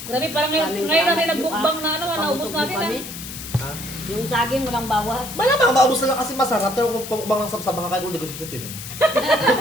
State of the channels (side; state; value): left; noise; hiss, 10 dB below the sound